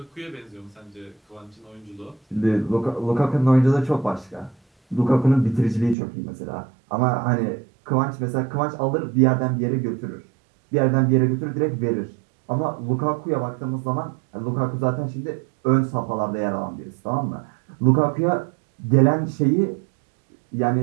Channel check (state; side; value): drops out; left; at 6.0 s